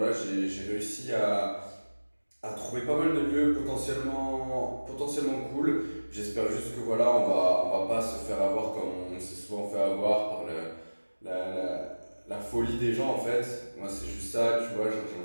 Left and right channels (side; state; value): both; inverted; correlation -1.00